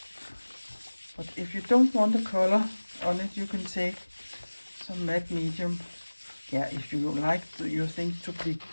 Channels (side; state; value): both; inverted; correlation -1.00